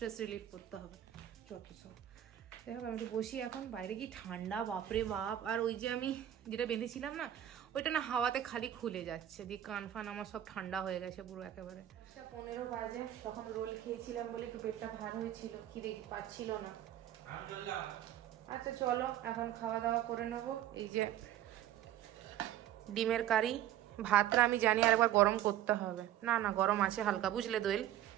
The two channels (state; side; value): quieter; left; 11.9 dB